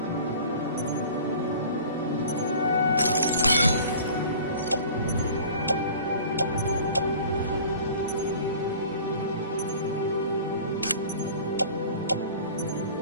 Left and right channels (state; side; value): inverted; both; correlation -0.44